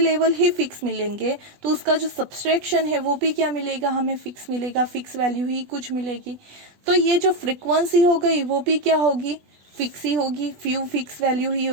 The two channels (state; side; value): late; left; 20 ms